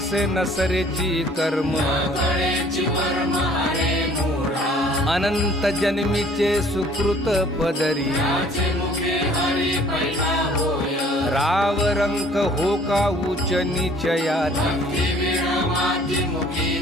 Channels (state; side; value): normal; both; correlation 0.55